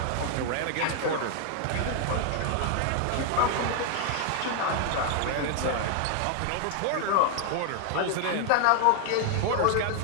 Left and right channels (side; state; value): both; different; correlation 0.00